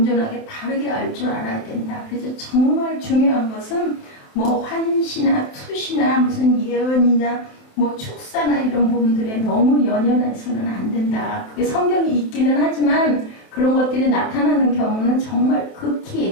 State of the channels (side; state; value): right; late; 27 ms